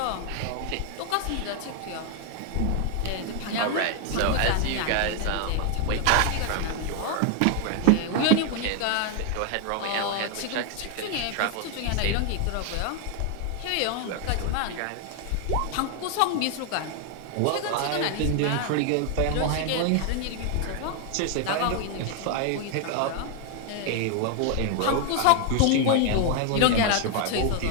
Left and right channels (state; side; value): different; both; correlation 0.00